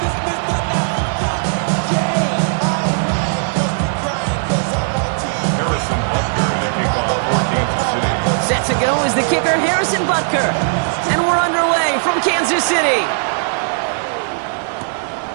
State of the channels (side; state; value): left; silent; digital silence